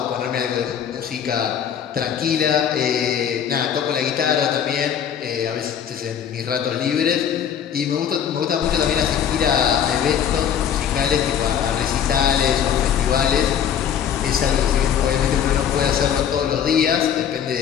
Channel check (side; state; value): right; quieter; 8.7 dB